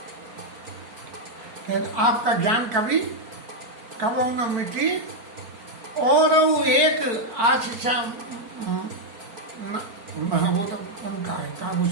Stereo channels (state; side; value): late; left; 4.5 ms